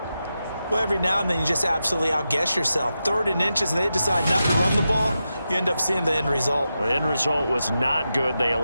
Well, every now and then you just absolutely outguess yourself. 3rd and inches, and they decide not to run the ball. You end up seeing the end result. The end result was not good. They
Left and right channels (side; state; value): both; inverted; correlation -0.89